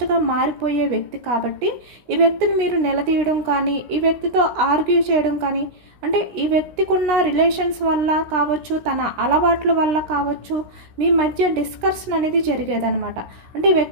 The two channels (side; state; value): left; late; 16 ms